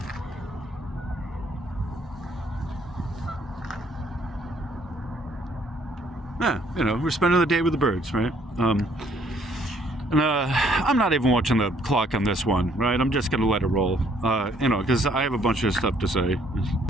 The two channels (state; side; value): normal; both; correlation 0.65